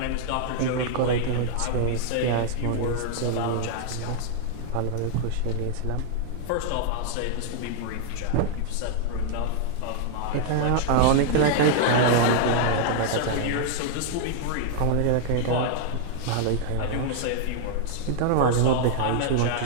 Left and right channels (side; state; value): both; different; correlation 0.00